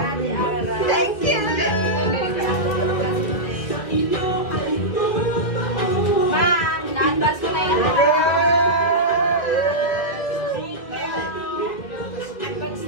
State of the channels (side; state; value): right; late; 1.9 ms